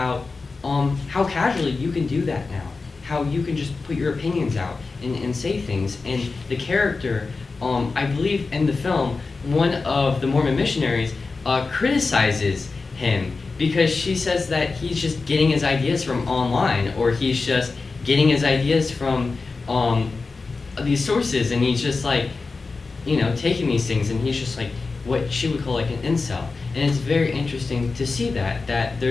how casually you can do that now, how you can just put your opinions out and say things. And the character, I believe in the film, one of the Mormon missionaries criticizes him because she says that he's just getting his ideas from online, or he's just getting his ideas from these sources, and he's just like, taking these things, and he's just like what she would call like an incel. And it's very interesting to see that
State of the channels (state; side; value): quieter; right; 4.1 dB